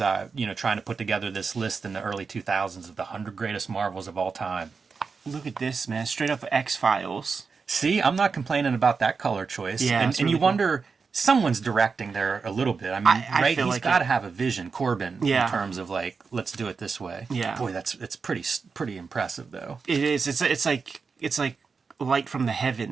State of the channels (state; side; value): quieter; left; 5.1 dB